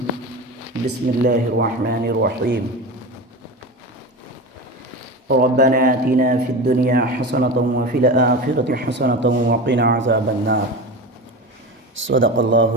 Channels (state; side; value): normal; both; correlation 0.26